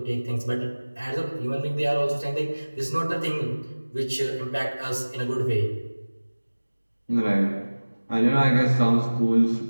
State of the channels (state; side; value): inverted; both; correlation -1.00